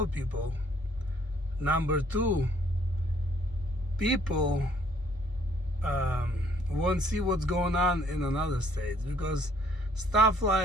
people. Number two, people won't see what's going on in another states, because stuff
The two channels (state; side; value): normal; both; correlation 0.62